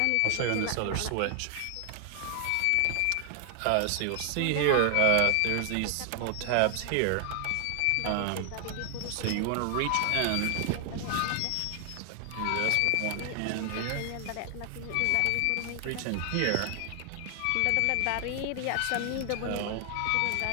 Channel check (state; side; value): different; both; correlation 0.00